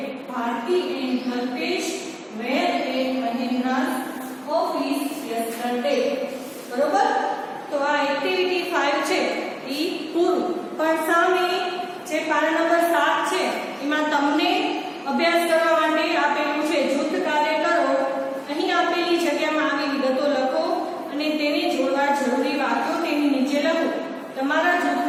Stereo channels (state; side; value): identical; both; correlation 1.00